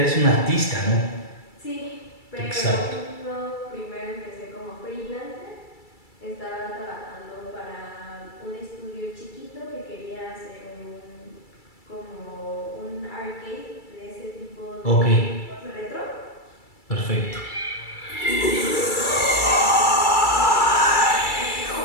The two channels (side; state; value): right; late; 2.3 ms